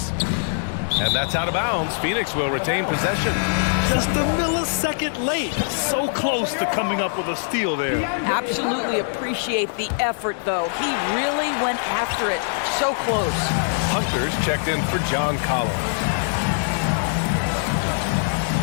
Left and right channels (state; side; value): silent; right; digital silence